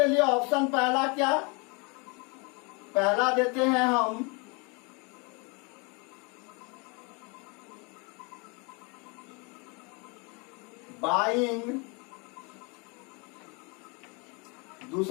लिए ऑप्शन पहला क्या, पहला देते हैं हम बाइंग,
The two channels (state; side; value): quieter; right; 31.4 dB